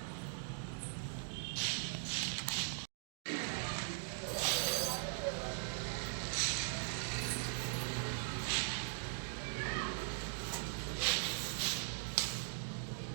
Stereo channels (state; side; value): silent; left; digital silence